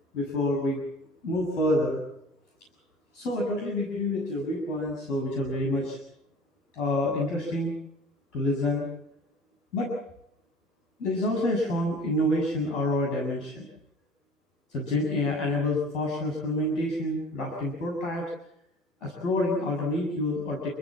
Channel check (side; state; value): both; normal; correlation 0.45